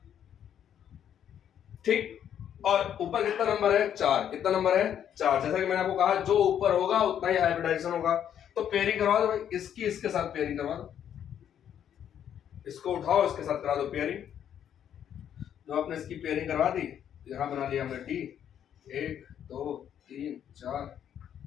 ठीक। और ऊपर कितना नंबर है, 4। कितना नंबर है, 4। जैसा कि मैंने आपको कहा जो ऊपर होगा उतना ही हाइब्रिडाइजेशन होगा। तो पेयरिंग करवा दो भाई, इसकी इसके साथ पेयरिंग करवा दो, इसको उठाओ इसके साथ करा दो पेयरिंग। जो आपने इसकी पेयरिंग करवा दी, यहां बना लिया हमने डी, 1 2 3 4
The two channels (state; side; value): quieter; right; 9.5 dB